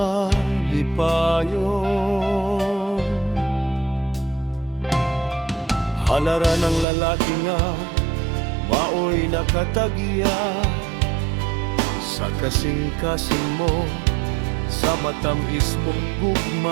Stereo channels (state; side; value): drops out; left; at 6.9 s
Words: Halara ng lalaki nga maoy nakatagya sa kasing-kasing mo, sa matamis mong